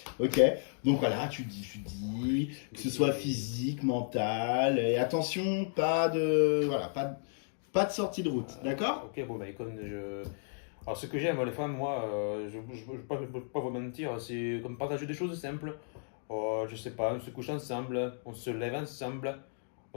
Ok, donc voilà, tu dis que ce soit physique, mental, et attention, pas de sortie de route, d'accord? Ok, bon, bah écoute, alors ce que j'aime, les femmes, moi, je ne peux pas vous mentir, c'est comme partager des choses simples. Je sais pas, on se couche ensemble, on se lève ensemble,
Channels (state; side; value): silent; right; 55 dB below the other